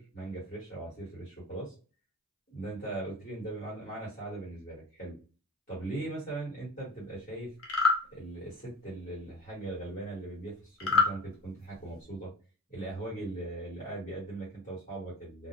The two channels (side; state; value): both; normal; correlation 0.40